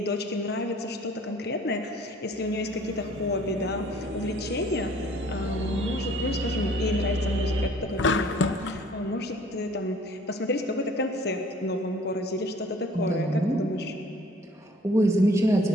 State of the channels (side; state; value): both; normal; correlation 0.54